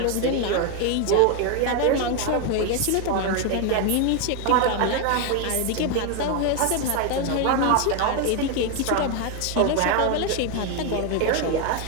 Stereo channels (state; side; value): different; both; correlation 0.01